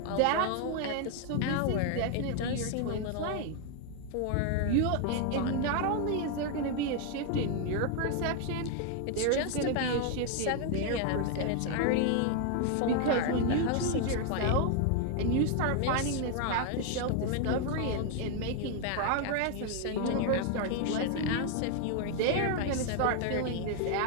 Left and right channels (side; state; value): both; different; correlation 0.01